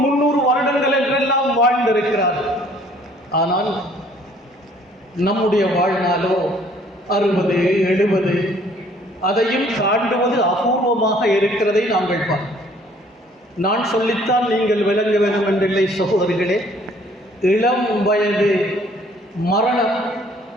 300 வருடங்கள் என்றெல்லாம் வாழ்ந்திருக்கிறார்கள். ஆனால் நம்முடைய வாழ்நாளோ 60, 70, அதையும் தாண்டுவது அபூர்வமாக இருக்கிறதை நாங்கள் பார்க்கிறோம். நான் சொல்லித்தான் நீங்கள் விளங்க வேண்டும் என்றில்லை சகோதரிகளே. இளம் வயது மரணம்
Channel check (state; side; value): normal; both; correlation 0.58